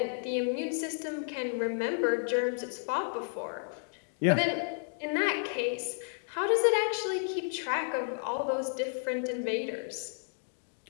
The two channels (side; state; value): right; silent; digital silence